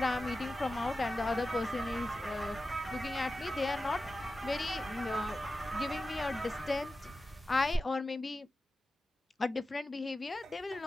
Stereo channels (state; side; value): normal; both; correlation 0.93